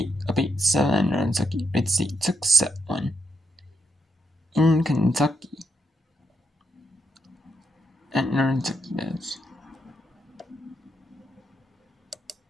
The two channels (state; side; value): normal; both; correlation 0.80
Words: up 8-7. Kentucky. Red State took set 1 in Kentucky. At Kentucky does.